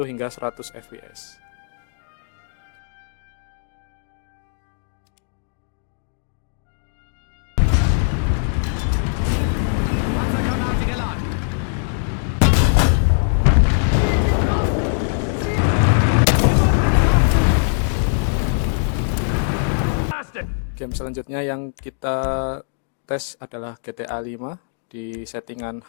hingga 100 FPS. Game selanjutnya yang kita tes adalah GTA 5 di settingan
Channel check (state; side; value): silent; right; digital silence